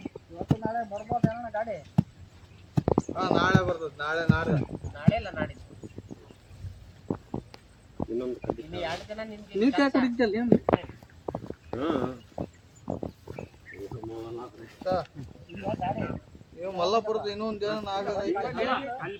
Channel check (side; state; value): both; identical; correlation 1.00